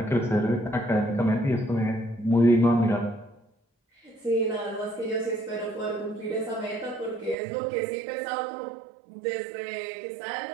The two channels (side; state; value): left; drops out; at 7.4 s